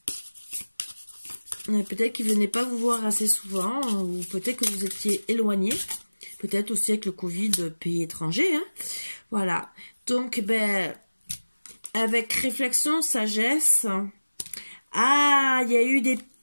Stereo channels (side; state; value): both; inverted; correlation -1.00